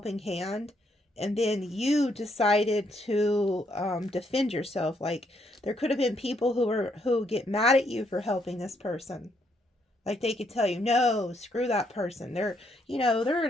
hand. And then you decided to defend yourself. Like, there could have been people who get mad at you for helping this person. Like, they could tell you, no, screw that person. They're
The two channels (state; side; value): normal; both; correlation 0.74